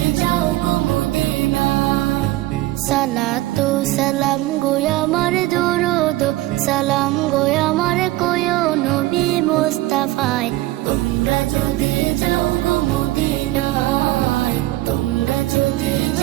যাও গো মদিনায়। সালাতু সালাম গো আমার দরুদ সালাম গো আমার কোয়ো নবী মুস্তাফায়। তোমরা যদি যাও গো মদিনায়, তোমরা যদি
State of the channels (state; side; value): quieter; left; 17.4 dB